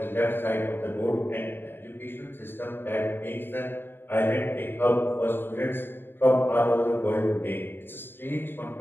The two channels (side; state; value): right; late; 0.099 ms